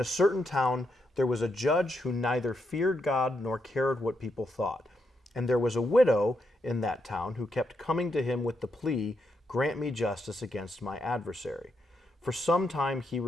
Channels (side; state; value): both; normal; correlation 0.81